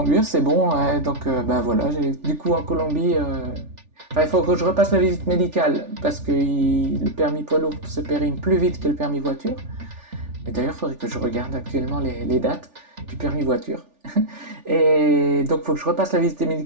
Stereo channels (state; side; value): late; left; 3.4 ms